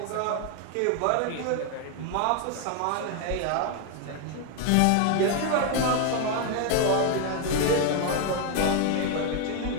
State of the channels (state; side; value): different; both; correlation 0.00